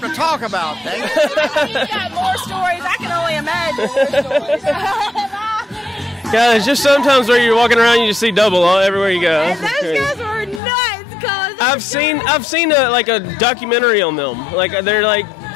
to talk about. You've got more stories. I can only imagine more stories. Guys, just sometimes where you're walking around, you just see double everywhere you go. And those guys were nuts, cause I've seen a documentary on them. Like they're like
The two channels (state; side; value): drops out; right; at 10.6 s